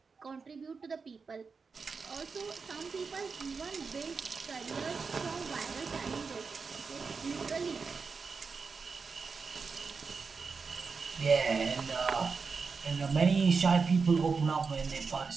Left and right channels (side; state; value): left; quieter; 5.0 dB